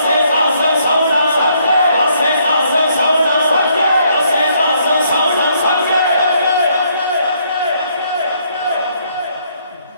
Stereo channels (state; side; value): inverted; both; correlation -0.70